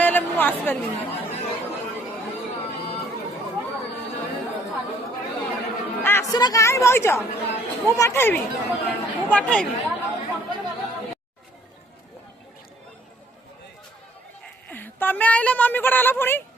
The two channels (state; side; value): normal; both; correlation 0.62